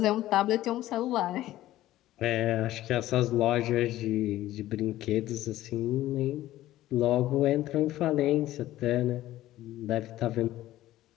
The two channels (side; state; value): right; quieter; 14.9 dB